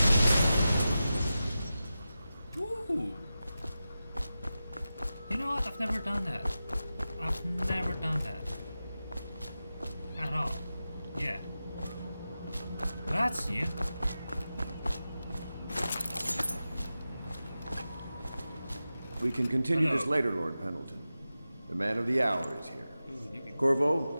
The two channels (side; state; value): both; inverted; correlation -0.93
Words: Ooh! You know what? I've never done that. I've never done that. At all. Yeah. That's new. We can continue this later, Lord Pendleton. The man of the hour is here. Corvo,